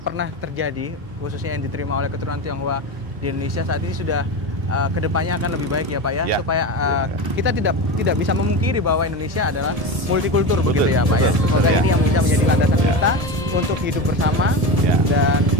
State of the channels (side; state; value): left; late; 1.7 ms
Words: pernah terjadi, khususnya yang diterima oleh keturunan Tionghoa di Indonesia saat ini sudah kedepannya akan lebih baik ya Pak ya, supaya kita tidak bisa memungkiri bahwa Indonesia adalah multikultur begitu ya Pak ya. Semoga ini yang bisa menjadi landasan kita untuk hidup bersama dan